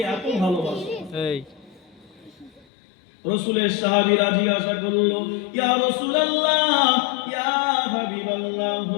এত ভালোবাসে। রাসূলের সাহাবীরা জিজ্ঞাসা করলো, ইয়া রাসূলুল্লাহ, ইয়া হাবিবাল্লাহ,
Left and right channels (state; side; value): drops out; right; at 2.7 s